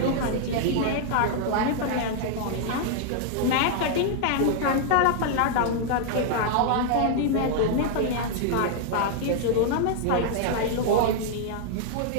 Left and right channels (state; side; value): different; both; correlation 0.00